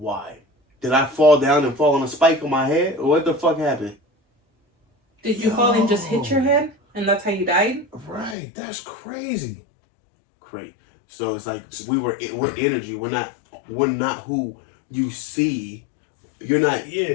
Did I fall down and fall on a spike on my head? Or what the fuck happened? Did you fall and just hit your head? And that's how you died? Right. That's crazy. Great. So it's like we're energy. We're not who you see. You're not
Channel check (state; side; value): drops out; right; at 8.3 s